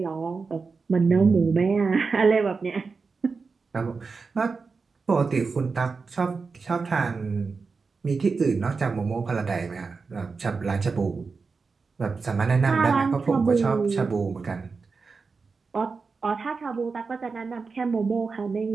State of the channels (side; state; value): left; quieter; 4.6 dB